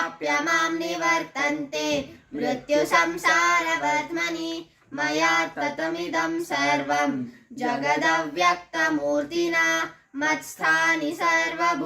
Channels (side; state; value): both; identical; correlation 1.00